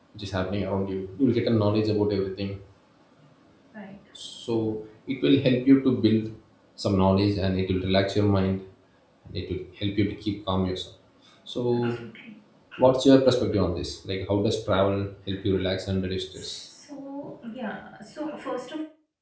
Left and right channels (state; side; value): identical; both; correlation 1.00